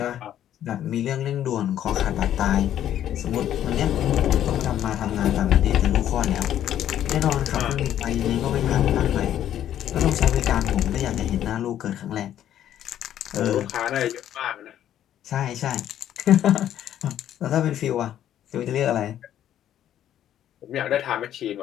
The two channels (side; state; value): right; quieter; 11.2 dB